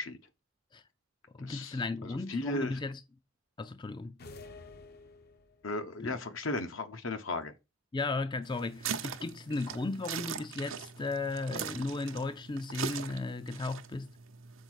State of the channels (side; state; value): both; normal; correlation 0.46